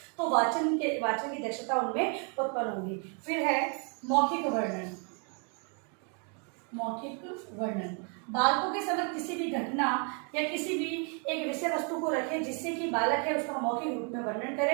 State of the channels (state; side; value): quieter; left; 38.4 dB